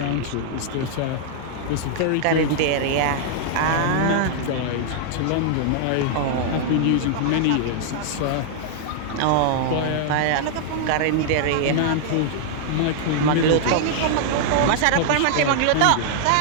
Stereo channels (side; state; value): both; different; correlation -0.01